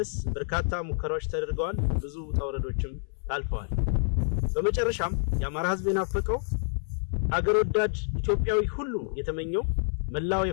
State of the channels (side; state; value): right; silent; 59 dB below the other